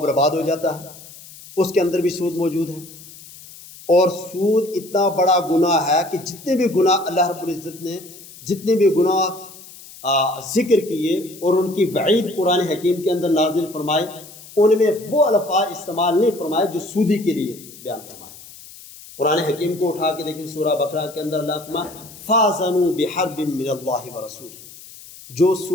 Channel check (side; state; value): left; noise; hiss, 18 dB below the sound